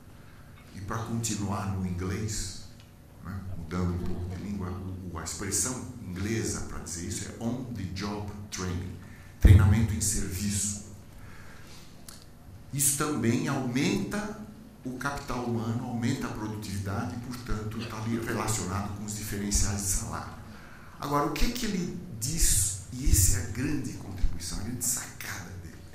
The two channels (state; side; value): identical; both; correlation 1.00